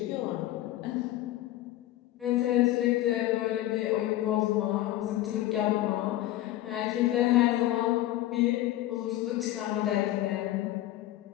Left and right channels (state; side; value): quieter; right; 14.9 dB